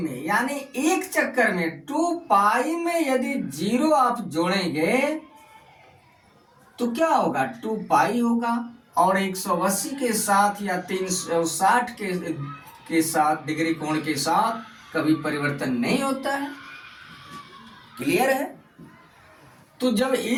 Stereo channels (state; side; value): identical; both; correlation 1.00